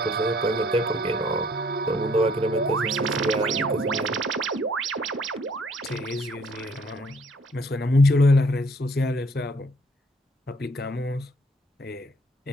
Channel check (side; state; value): both; normal; correlation 0.62